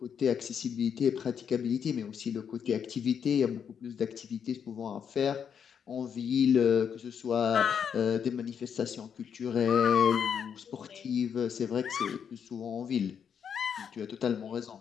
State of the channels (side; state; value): right; quieter; 7.6 dB